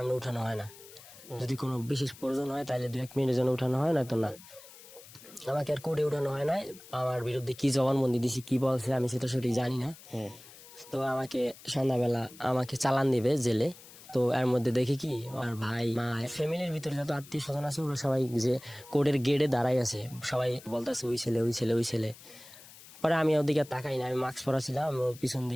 উঠানো হয় না, যদি কোনো বিশেষ প্রয়োজন হয় তাহলে 2-1 মিনিটের জন্য উঠানো হয়, না তো না। আমাকে আর কোর্টে উঠানো হয় নাই। আমার বিরুদ্ধে কি জবানবন্দি দিছি, কি বলছে আমি সেটা সঠিক জানি না। তো আমাকে সন্ধ্যাবেলা আমাকে চালান দিবে জেলে। তো এর মধ্যে দেখি কি আমার ভাই মা ফ্যামিলির ভিতরে যত আত্মীয় স্বজন আছে ওরা সবাই যে কোর্টের গেটে দাঁড়াই আছে, সবাই বলতেছে ওই ছেলে, ওই ছেলে, ওই ছেলে। পরে আমি ওদিকে তাকাই না, আমি মাস্ক পরা ছিলাম। আমি পিছন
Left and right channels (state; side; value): noise; left; hiss, 19 dB below the sound